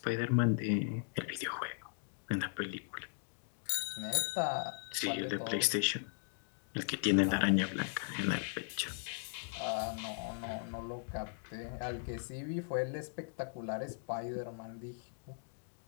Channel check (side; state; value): right; silent; digital silence